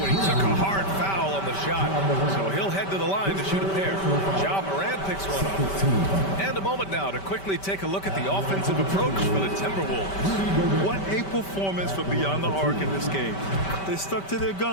and he took a hard foul on the shot. So he'll head to the line to shoot a pair. Ja Morant picks one up. And a moment now to quickly take a look at the offensive approach for the Timberwolves. What a performance for Beyond the Arc in this game. They stuck to their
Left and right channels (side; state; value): right; late; 5.2 ms